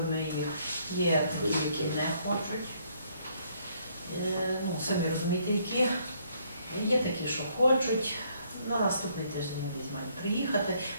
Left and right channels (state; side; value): inverted; both; correlation -0.68